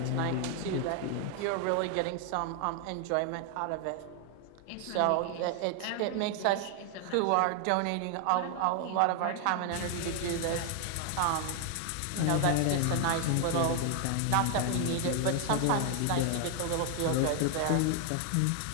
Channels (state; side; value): different; both; correlation 0.00